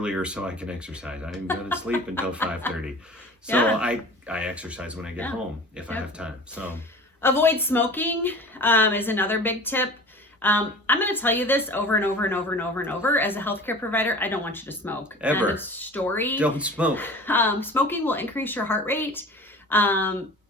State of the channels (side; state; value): both; normal; correlation 0.40